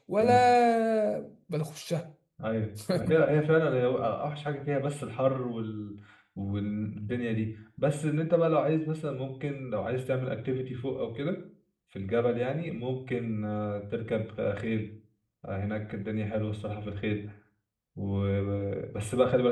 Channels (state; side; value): identical; both; correlation 1.00